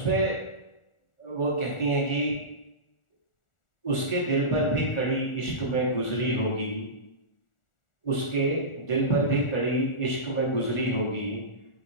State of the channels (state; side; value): late; right; 1.4 ms